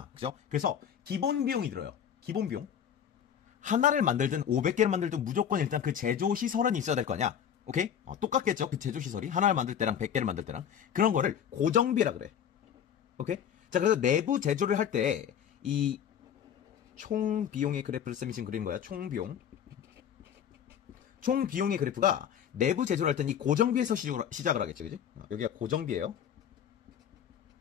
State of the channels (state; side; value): quieter; right; 8.9 dB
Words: 그죠? 그래서, 기본 비용이 들어요. 기본 비용. 하나를 만들든 500개를 만들든 무조건 일단 그 제조 시설은 있어야 될 거 아니야. 오케이? 똑같겠죠? 그 제조 시설이. 하나를 만들 때랑 100개를 만들 때랑. 그런 거를 고정비라 그래. 오케이? 자, 그래서 내부 제조를 할 때, 이, 총 비용의 그래프를 쌤이 지금 그린 거야. 총 비용. 총 비용의 그래프가 내부 제조를 할 때는 이 고정비에서 시작을 하겠지, 그지? 여기가 고정비예요.